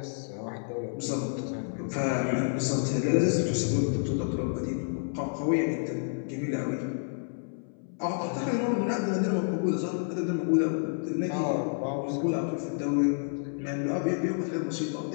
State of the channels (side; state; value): right; silent; 58 dB below the other